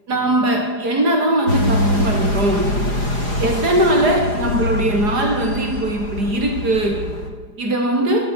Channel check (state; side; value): late; left; 4.9 ms